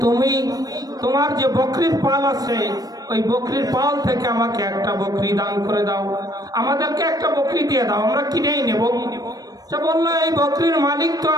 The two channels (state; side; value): late; left; 0.18 ms